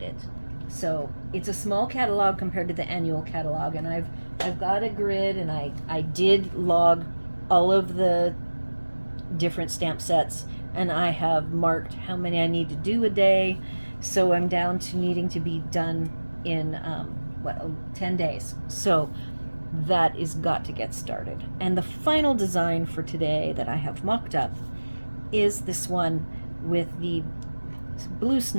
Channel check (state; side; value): inverted; both; correlation -1.00